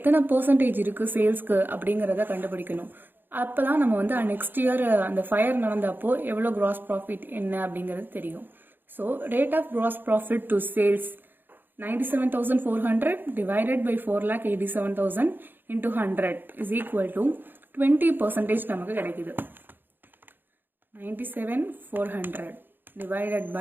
பர்சன்டேஜ் இருக்குது சேல்ஸ்க்கு அப்படிங்கிறத கண்டுபிடிக்கணும். அப்போ தான் நம்ம வந்து நெக்ஸ்ட் இயர் அந்த ஃபயர் நடந்தப்போ எவ்வளோ கிராஸ் ப்ராஃபிட் என்ன அப்படிங்கிறது தெரியும். So rate of gross profit to sales 97,400 divided by 4,87,000 into 100 is equal to 20% நமக்கு கிடைக்குது. 97,400 divided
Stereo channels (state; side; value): late; left; 0.095 ms